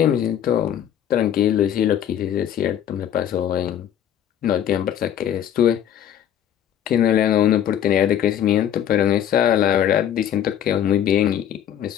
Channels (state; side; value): quieter; right; 10.1 dB